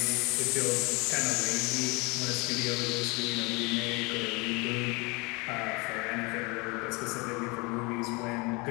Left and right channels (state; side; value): quieter; right; 27.3 dB